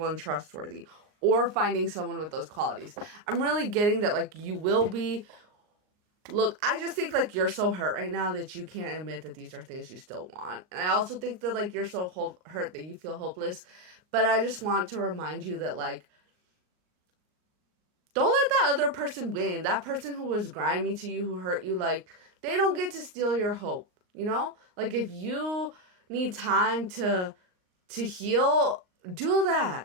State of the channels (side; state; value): left; late; 39 ms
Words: and trustworthy, or finding someone with those qualities. I'm really getting that, like, you will be. Look, I just think, like, you're so hurt right now that you can't admit that these are things you still want. And I also think that, like, you're so hurt that you feel hopeless. But I just want to remind you that, like, don't let that other person win. That person who was grimy to you, who hurt you, like, they don't get to steal your hope, you know? Like, if you need time to heal, do